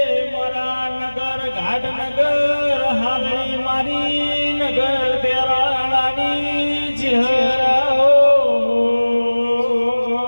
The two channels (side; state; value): both; inverted; correlation -1.00